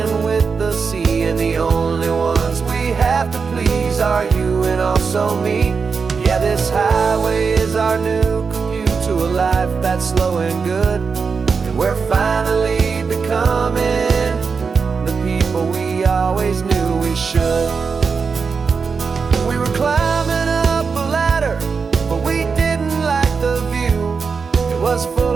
with the sea, and the only ones we have to please are you and also me. Yeah, this highway is our new commute to a life that's slow and good, and we're finally becoming the people we always knew we should. We were climbing up a ladder, but we didn't like the view. It was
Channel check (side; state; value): left; quieter; 5.3 dB